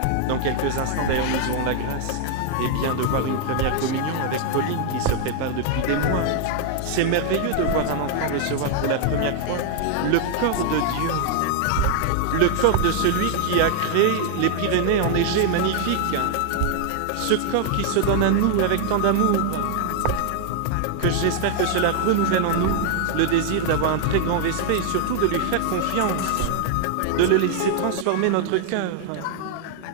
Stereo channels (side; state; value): both; different; correlation 0.00